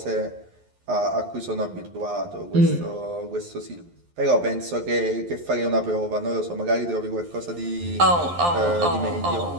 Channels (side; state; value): left; late; 11 ms